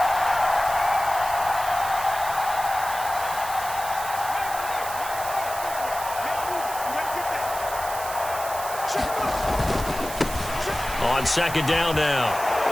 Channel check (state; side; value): noise; right; hiss, 10 dB below the sound